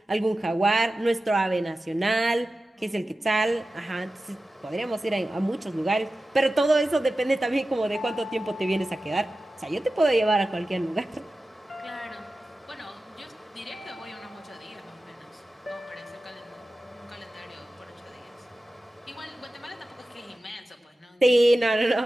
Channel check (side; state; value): both; normal; correlation 0.94